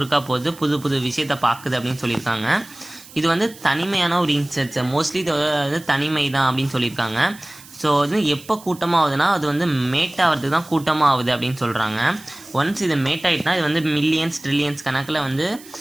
போகுது, புது புது விஷயத்தை பார்க்குது அப்படின்னு சொல்லியிருக்காங்க. இது வந்து தனிமையான ஒரு இன்செக்ட்ஸ், மோஸ்ட்லி இது வந்து தனிமை தான் அப்படின்னு சொல்லியிருக்காங்க. ஸோ அது எப்போ கூட்டமாகுதுன்னா அது வந்து மேட் ஆகிறதுக்கு தான் கூட்டமாக ஆகுது அப்படின்னு சொல்கிறாங்க. ஒன்ஸ் இது மேட் ஆகிட்டுனா இது வந்து மில்லியன்ஸ் ட்ரில்லியன்ஸ் கணக்கில் வந்து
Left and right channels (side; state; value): right; noise; hiss, 20 dB below the sound